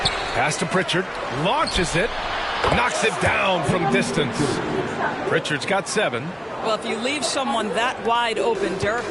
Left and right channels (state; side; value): identical; both; correlation 1.00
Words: Pass to Pritchard. Launches it. Knocks it down from distance. Pritchard's got 7. Well, if you leave someone that wide open, Derek